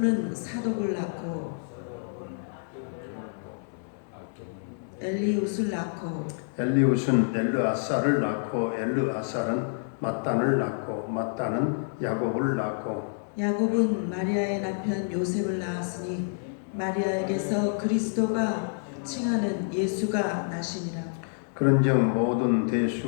사독을 낳고 엘리웃을 낳고 엘리웃은 엘르아사를 낳고 엘르아사는 mat단을 낳고 mat단은 야곱을 낳고 야곱은 마리아의 남편 요셉을 낳았으니 마리아에게서 그리스도가 칭하는 예수가 나시니라. 그런즉 모든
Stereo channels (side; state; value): right; silent; digital silence